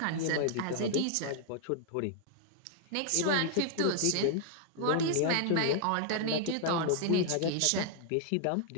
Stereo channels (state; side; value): different; both; correlation 0.00